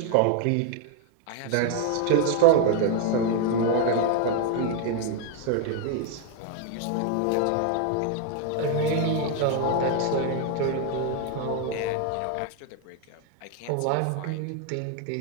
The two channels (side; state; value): both; different; correlation 0.00